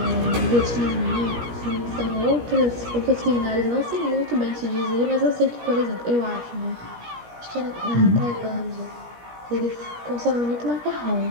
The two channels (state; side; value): late; left; 17 ms